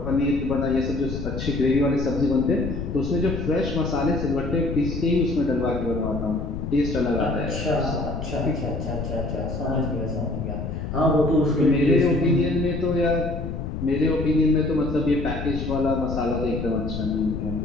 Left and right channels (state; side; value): noise; left; rumble, 5 dB below the sound